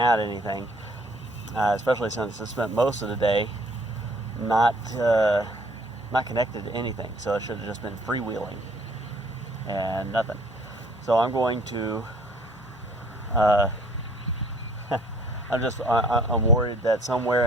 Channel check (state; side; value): normal; both; correlation 0.58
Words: anything. Especially since it spent most of the day not connected to anything, so it should have just been freewheeling and nothing. So I'm going to. I'm worried that somewhere